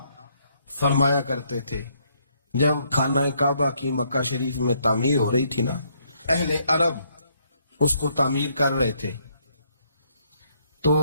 فرمایا کرتے تھے۔ جب خانہ کعبہ کی مکہ شریف میں تعمیر ہو رہی تھی نا، اہل عرب اس کو تعمیر کر رہے تھے، تو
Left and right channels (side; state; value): both; inverted; correlation -0.71